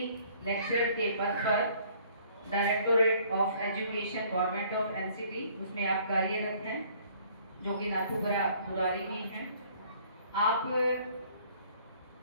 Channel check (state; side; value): inverted; both; correlation -0.58